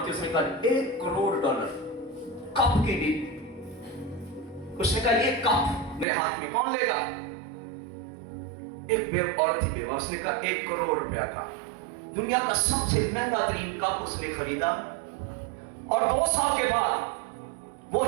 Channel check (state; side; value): drops out; left; at 6.1 s